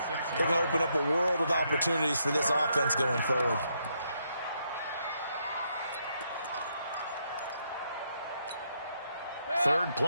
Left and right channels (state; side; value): inverted; both; correlation -0.77